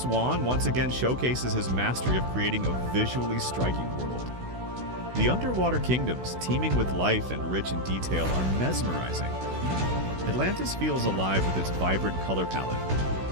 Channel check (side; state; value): left; late; 16 ms